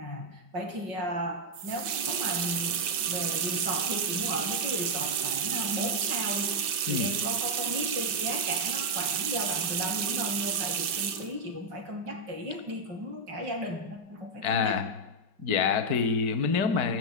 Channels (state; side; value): late; left; 5.2 ms